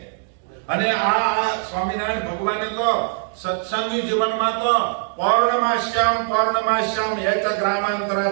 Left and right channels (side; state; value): left; silent; digital silence